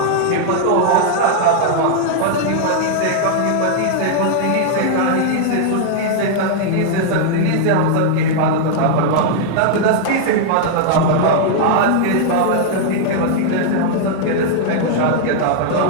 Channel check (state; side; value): different; both; correlation -0.01